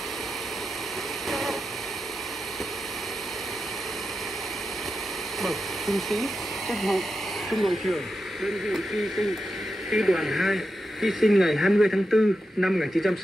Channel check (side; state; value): both; normal; correlation 0.89